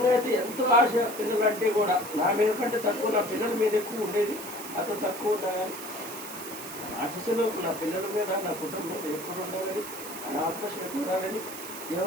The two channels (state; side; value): noise; right; hiss, 11 dB below the sound